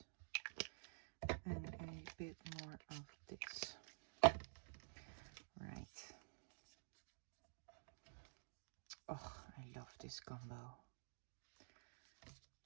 and a bit more of this. Right. Oh, I love this combo.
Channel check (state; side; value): silent; left; digital silence